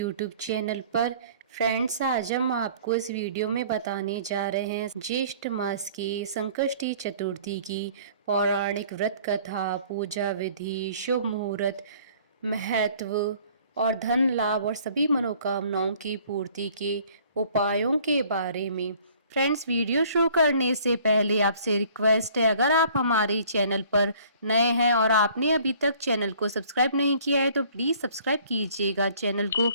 चैनल पर। फ्रेंड्स, आज हम आपको इस वीडियो में बताने जा रहे हैं ज्येष्ठ मास की संकष्टी चतुर्थी की पौराणिक व्रत कथा, पूजा विधि, शुभ मुहूर्त, महत्व और धन लाभ और सभी मनोकामनाओं की पूर्ति के उपायों के बारे में। फ्रेंड्स, वीडियो शुरू करने से पहले आपसे रिक्वेस्ट है, अगर आप हमारे चैनल पर नए हैं और आपने अभी तक चैनल को सब्सक्राइब नहीं किया है तो प्लीज़ सब्सक्राइब कीजिएगा चैनल को।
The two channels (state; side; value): inverted; both; correlation -0.54